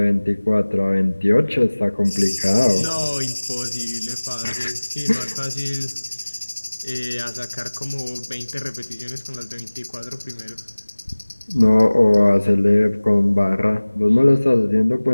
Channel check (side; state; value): both; inverted; correlation -1.00